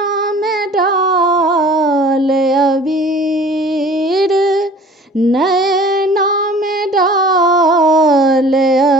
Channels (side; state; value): both; normal; correlation 0.47